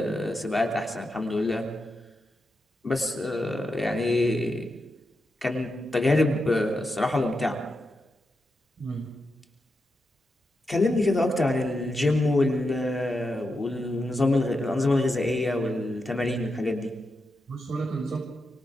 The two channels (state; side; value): normal; both; correlation 0.87